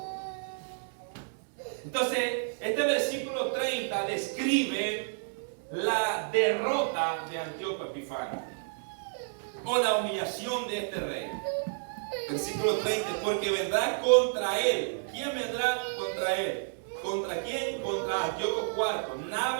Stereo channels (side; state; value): left; silent; digital silence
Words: Entonces, este versículo 30 describe la derrota de Antíoco Epifanio o la humillación de este rey. Versículo 30, porque vendrá contra él. ¿Quién vendrá contra él? ¿Contra quién? Contra Antíoco IV.